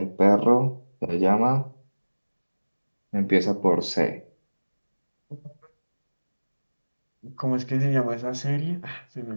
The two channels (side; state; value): both; inverted; correlation -1.00